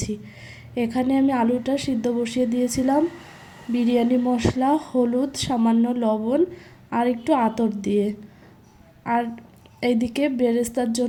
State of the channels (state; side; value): identical; both; correlation 1.00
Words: এখানে আমি আলুটা সিদ্ধ বসিয়ে দিয়েছিলাম বিরিয়ানি মশলা, হলুদ, সামান্য লবণ আর একটু আতর দিয়ে। আর এইদিকে বেরেস্তার